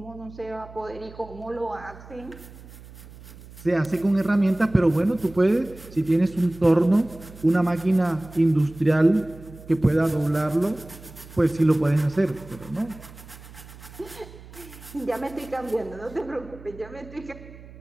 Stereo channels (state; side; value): noise; right; hum, 18 dB below the sound